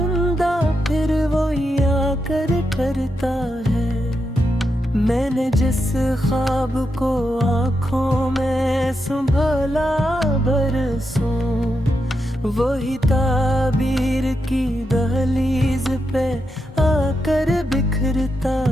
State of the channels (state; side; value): normal; both; correlation 0.85